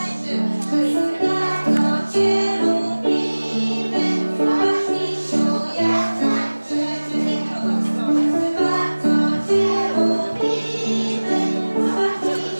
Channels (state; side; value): inverted; both; correlation -1.00